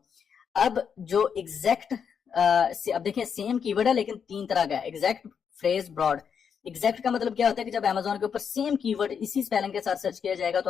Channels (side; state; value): right; quieter; 7.0 dB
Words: अब जो एग्जैक्ट, अब देखिए सेम कीवर्ड है लेकिन तीन तरह का है, एग्जैक्ट, फ्रेज, ब्रॉड। एग्जैक्ट का मतलब क्या होता है कि जब अमेजोन के ऊपर सेम कीवर्ड इसी स्पेलिंग के साथ सर्च किया जाएगा तो